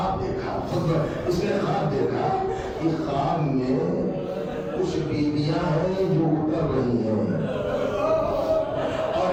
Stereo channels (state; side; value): identical; both; correlation 1.00